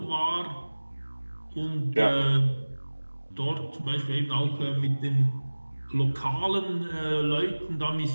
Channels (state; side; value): inverted; both; correlation -1.00